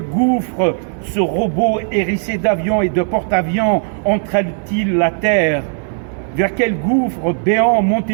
gouffre ce robot hérissé d'avions et de porte-avions entraîne-t-il la terre? Vers quel gouffre béant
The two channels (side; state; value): left; silent; digital silence